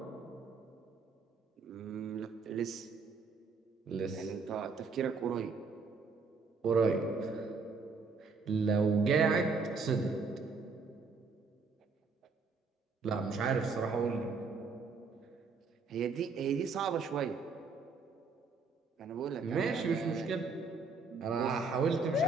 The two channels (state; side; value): quieter; left; 4.5 dB